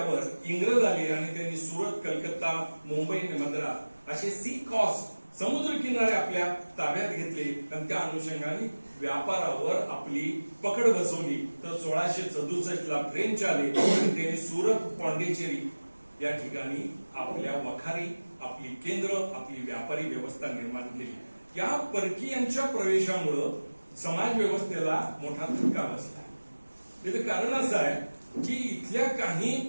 इंग्रज आले आणि त्यांनी सुरत, कलकत्ता, मुंबई, मद्रास असे सी कॉस्ट समुद्र किनारे आपल्या ताब्यात घेतले आणि त्या अनुषंगाने व्यापारावर आपली पकड बसवली. तर 1667 ला फ्रेंच आले आणि त्यांनी सुरत, पॉंडिचेरी या ठिकाणी आपल्या वखारी, आपली केंद्र, आपली व्यापारी व्यवस्था निर्माण केली. या परकीयांच्या प्रवेशामुळं समाज व्यवस्थेला मोठा धक्का बसला. याचं कारण असं आहे की इथल्या काही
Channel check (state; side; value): inverted; both; correlation -1.00